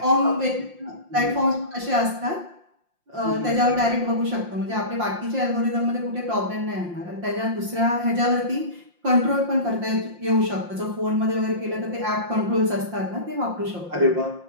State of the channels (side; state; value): left; late; 5.7 ms